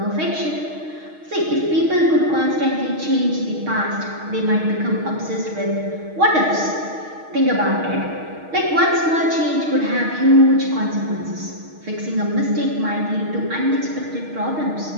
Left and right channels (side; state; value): left; late; 6.4 ms